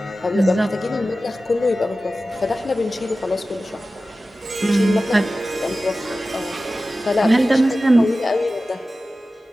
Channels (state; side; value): normal; both; correlation 0.95